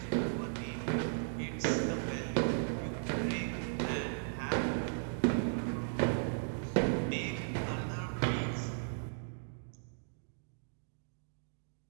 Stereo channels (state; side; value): silent; left; digital silence